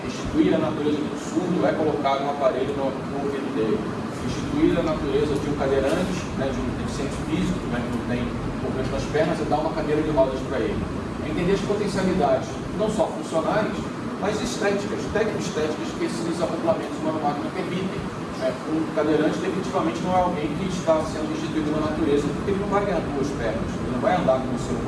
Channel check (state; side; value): identical; both; correlation 1.00